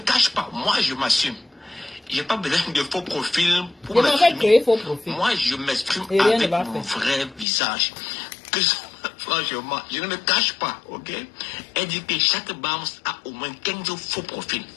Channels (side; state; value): right; drops out; at 7.5 s